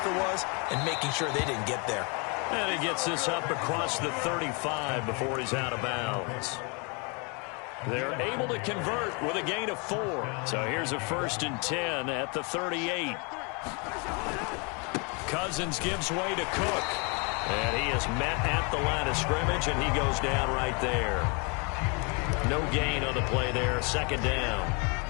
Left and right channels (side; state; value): right; quieter; 32.9 dB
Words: was and making sure they didn't get there. And he gets this up across the 35 before he's out of bounds. They're able to convert with a gain of 4. So here's a 1st and 10 at the 38. Cousins gives way to Cook. And he is met at the line of scrimmage, and he goes down right there. No gain on the play there. 2nd down.